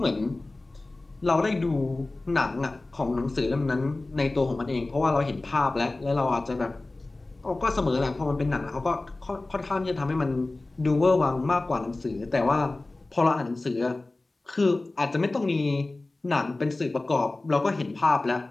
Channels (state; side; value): quieter; right; 3.0 dB